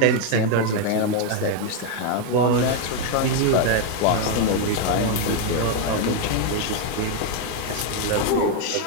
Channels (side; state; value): both; different; correlation 0.01